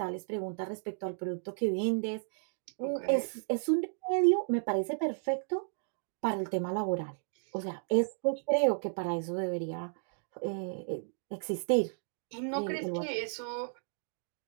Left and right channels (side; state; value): left; silent; digital silence